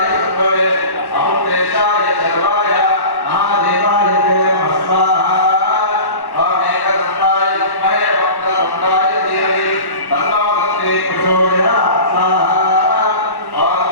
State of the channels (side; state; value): right; late; 1.1 ms